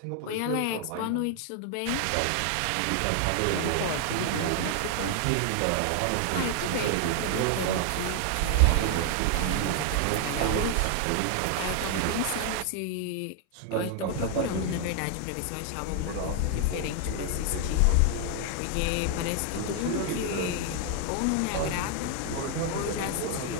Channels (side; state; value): both; different; correlation 0.00